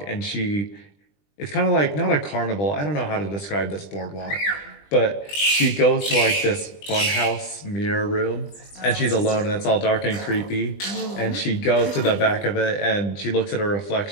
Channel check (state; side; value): late; right; 20 ms